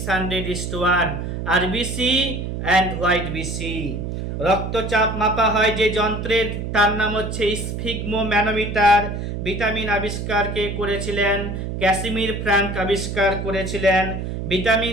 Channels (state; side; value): noise; right; hum, 5 dB below the sound